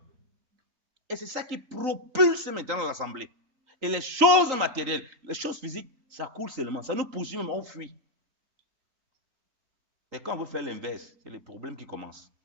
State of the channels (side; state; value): left; late; 3.8 ms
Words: Et c'est ça qui propulse maintenant l'Assemblée. Et les choses matérielles, les choses physiques, ça coule seulement. Ça nous poursuit même, on fuit. Mais quand on veut faire l'inverse, c'est les problèmes qui commencent.